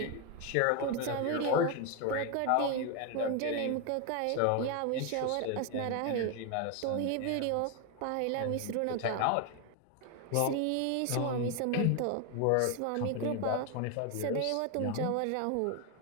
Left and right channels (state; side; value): different; both; correlation 0.01